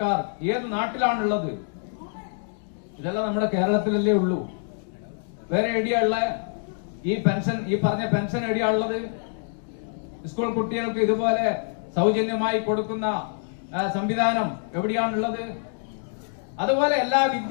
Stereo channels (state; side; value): silent; right; digital silence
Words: ഏത് നാട്ടിലാണുള്ളത്? ഇതെല്ലാം നമ്മുടെ കേരളത്തിലല്ലേ ഉള്ളൂ. വേറെ എവിടെയുള്ള ഈ പറഞ്ഞ പെൻഷൻ എവിടെയാണുള്ളത്? സ്കൂൾ കുട്ടികൾക്ക് ഇതുപോലെ സൗജന്യമായി കൊടുക്കുന്ന സംവിധാനം എവിടെയാണുള്ളത്? അതുപോലെ എല്ലാ